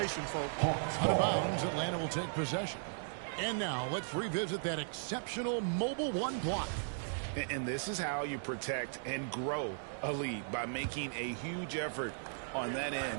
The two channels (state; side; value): silent; left; digital silence